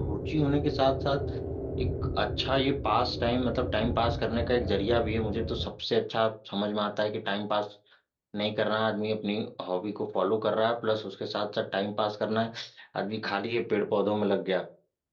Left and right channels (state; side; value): identical; both; correlation 1.00